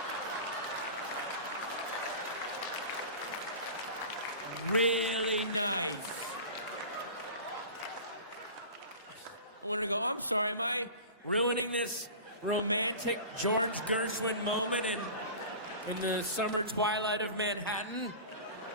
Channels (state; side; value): inverted; both; correlation -0.36